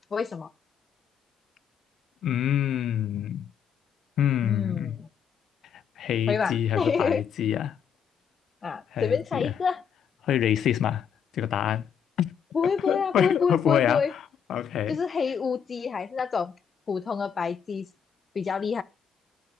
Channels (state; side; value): quieter; right; 7.6 dB